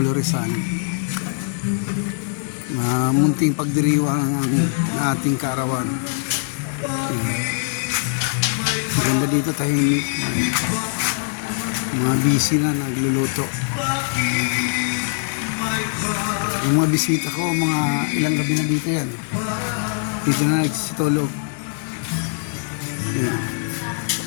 Rizal. Munting pagdiriwang ang ating kaarawan. Maganda dito, tahimik. Mga busy na nagluluto. Yung mga bisita ko, mga ilang gabi na dito yan. Dito na nagsitulog. Ayan.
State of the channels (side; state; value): right; silent; digital silence